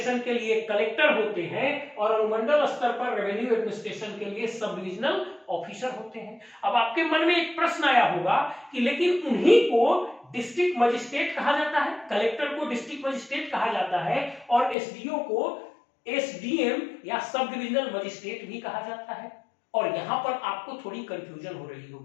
के लिए कलेक्टर होते हैं और अनुमंडल स्तर पर रेवेन्यू एडमिनिस्ट्रेशन के लिए सब डिविजनल ऑफिसर होते हैं। अब आपके मन में एक प्रश्न आया होगा कि लेकिन उन्हीं को डिस्ट्रिक्ट मजिस्ट्रेट कहा जाता है, कलेक्टर को डिस्ट्रिक्ट मजिस्ट्रेट कहा जाता है और एसडीओ को एसडीएम या सब डिविजनल मजिस्ट्रेट भी कहा जाता है। और यहां पर आपको थोड़ी कंफ्यूजन हो रही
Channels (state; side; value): drops out; right; at 14.8 s